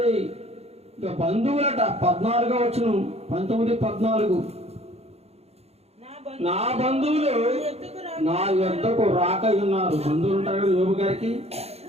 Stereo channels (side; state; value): left; late; 0.30 ms